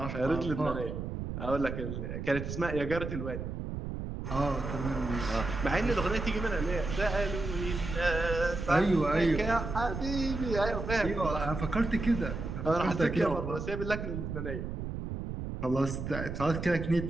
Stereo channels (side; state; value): right; noise; rumble, 5 dB below the sound